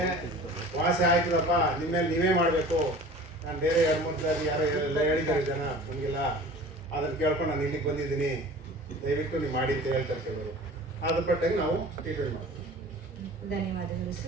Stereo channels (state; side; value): normal; both; correlation 0.42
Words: ವಾಸಿ ಆಯ್ತದಪ್ಪ, ನಿಮ್ಮ ಮೇಲೆ ನೀವೇ ಮಾಡಬೇಕು, ನಾನು ಬೇರೆ 2-3 ಸಾರಿ ಯಾರೋ ಎಲ್ಲ ಹೇಳಿದ್ದಾರೆ ಜನ, ನಮಗಿಲ್ಲ, ಅದನ್ನು ಕೇಳ್ಕೊಂಡು ನಾನು ಇಲ್ಲಿಗೆ ಬಂದಿದ್ದೀನಿ, ದಯವಿಟ್ಟು ನೀವು ಮಾಡಿ ಅಂತ ಹೇಳ್ತಾರೆ ಕೆಲವರು. ಅದ್ರ ಪಟ್ಟಾಗಿ ನಾವು ಟ್ರೀಟ್ಮೆಂಟ್ ಮಾಡ್ತೀವಿ. ಧನ್ಯವಾದಗಳು